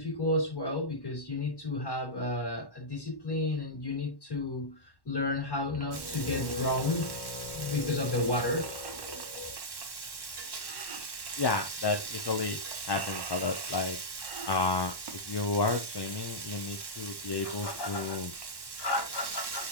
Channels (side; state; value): right; late; 1.1 ms